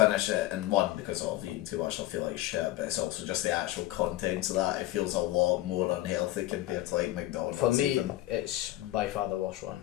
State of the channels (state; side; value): quieter; right; 16.0 dB